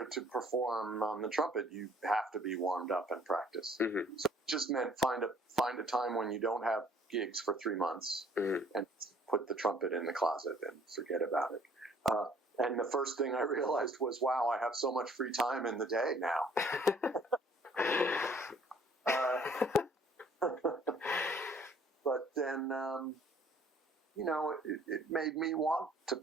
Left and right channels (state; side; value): normal; both; correlation 0.57